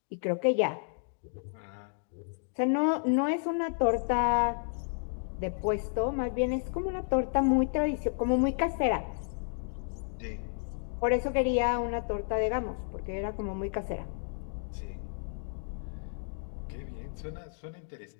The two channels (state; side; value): silent; right; digital silence